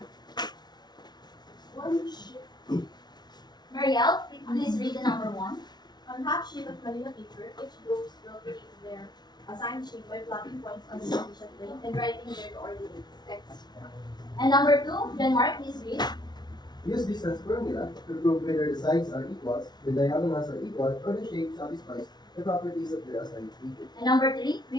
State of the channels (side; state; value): right; late; 0.20 ms